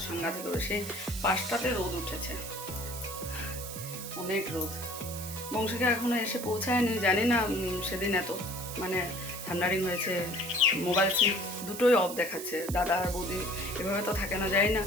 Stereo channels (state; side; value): noise; right; hiss, 9 dB below the sound